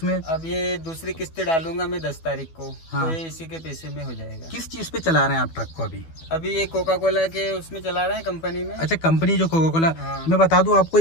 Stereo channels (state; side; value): late; right; 12 ms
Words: अब ये दूसरी किस्त डालूंगा मैं 10 तारीख को। हाँ। तो ये इसी के पैसे में हो जाएगा। किस चीज पे चला रहे हैं आप ट्रक को अभी? अभी ये कोका कोला के उसमें चला रहे हैं, कंपनी में। अच्छा, कंपनी जो कोका कोला। हाँ। मैं बता दूं आपको,